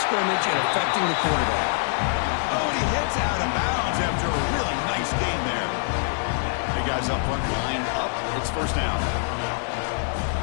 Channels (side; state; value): right; silent; digital silence